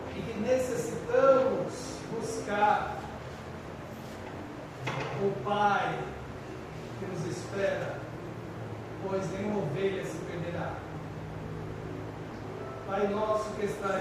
e que necessitamos buscar o Pai que nos espera, pois nenhuma ovelha se perderá. Pai nosso que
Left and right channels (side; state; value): both; identical; correlation 1.00